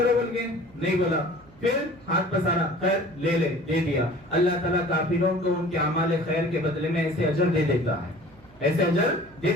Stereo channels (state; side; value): noise; right; hum, 25 dB below the sound